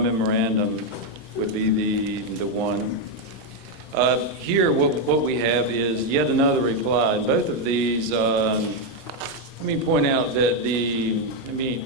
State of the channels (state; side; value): normal; both; correlation 0.02